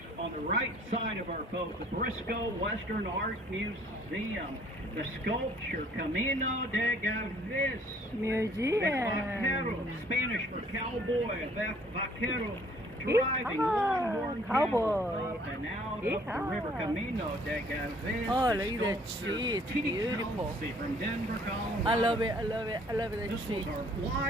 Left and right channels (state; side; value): normal; both; correlation 0.59